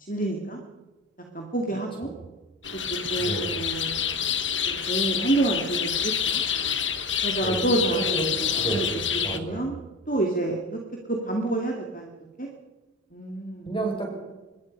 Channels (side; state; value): both; normal; correlation 0.29